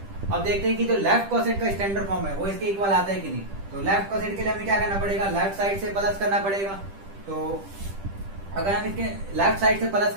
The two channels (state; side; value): late; left; 10 ms